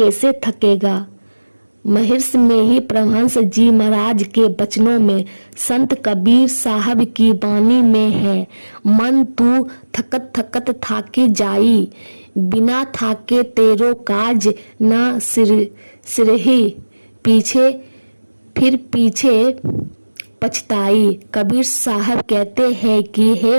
थकेगा। महर्ष में ही परमहंस जी महाराज के वचनों में संत कबीर साहब की वाणी में है, मन तू थकत थकत थाकी जाई, बिना थाके तेरो काज न सिरही, पीछे पछताई। कबीर साहब कहते हैं कि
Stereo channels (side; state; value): both; inverted; correlation -1.00